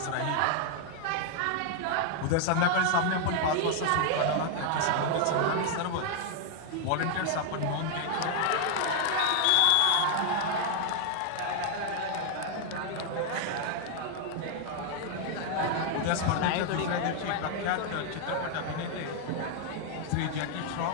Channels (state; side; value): different; both; correlation 0.00